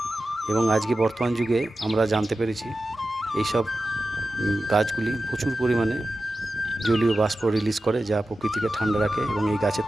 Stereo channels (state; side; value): normal; both; correlation 0.93